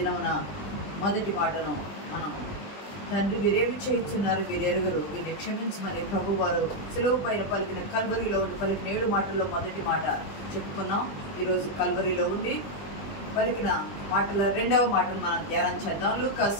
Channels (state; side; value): late; right; 20 ms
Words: మొదటి మాటను మనం తండ్రి వీరేమి చేయించున్నారు వీరెరుగరు వీరిని క్షమించమని ప్రభు వారు సిలువ పైన పలికిన కల్వరిలో ఉండి పలికిన 7 మాటల్లో మొదటి మాట చెప్పుకున్నాం. ఈరోజు కల్వరిలో ఉండి పలికిన మాటల 2వ మాటను మనం ధ్యానం చేద్దాం. లూకా